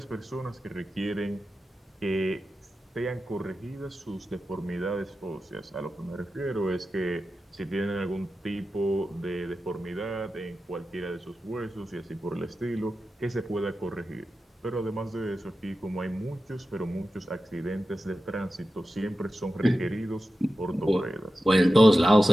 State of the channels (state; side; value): normal; both; correlation 0.92